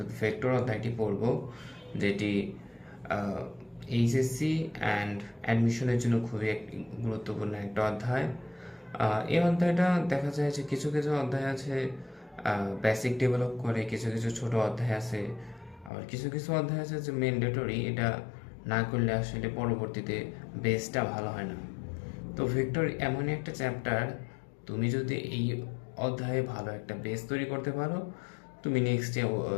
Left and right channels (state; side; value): drops out; right; at 15.9 s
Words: ভেক্টর অধ্যায়টি পড়ব, যেটি এইচএসসি অ্যান্ড অ্যাডমিশনের জন্য খুবই একটি গুরুত্বপূর্ণ একটা অধ্যায়। এই অধ্যায়টা দেখা যায় যে কিছু কিছু অধ্যায় আছে বেসিক ডেভেলপ করে, কিছু কিছু ছোট অধ্যায় আছে, আবার কিছু কিছু অধ্যায় আছে যে ম্যান্ডেটরি, এটা না করলে আসলে পরবর্তীতে বেসটা ভালো হয় না। তো ভেক্টর এমনই একটা চ্যাপ্টার, তুমি যদি এই অধ্যায়ে ভালো একটা বেস তৈরি করতে পারো, তুমি নেক্সটে